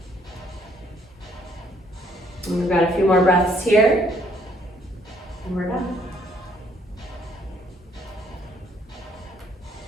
And we've got a few more breaths here. And we're done.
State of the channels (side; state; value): both; normal; correlation 0.65